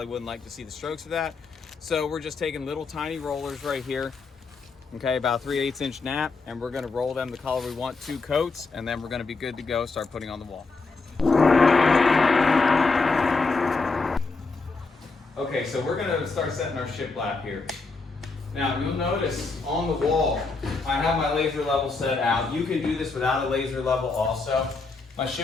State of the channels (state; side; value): quieter; right; 4.0 dB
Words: wouldn't like to see the strokes of that. So we're just taking little tiny rollers right here, okay, about 3/8 inch nap, and we're going to roll them the color we want, 2 coats, and then we're going to be good to go, start putting on the wall. Okay, so we're going to start setting our shiplap here. Now you'll notice on the wall, I have my laser level set out. You can do this without a laser level also. My